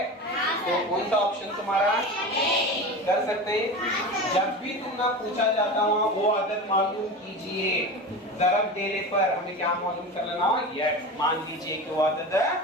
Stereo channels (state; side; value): normal; both; correlation 0.28